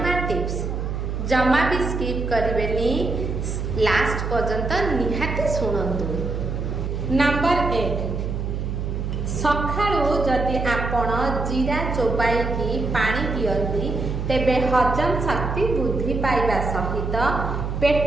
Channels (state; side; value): noise; right; hum, 3 dB below the sound